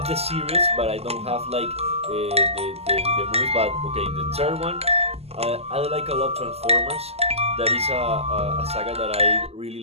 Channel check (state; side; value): late; left; 0.29 ms